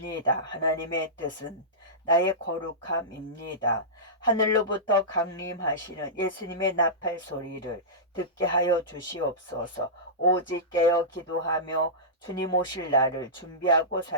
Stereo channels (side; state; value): both; normal; correlation -0.17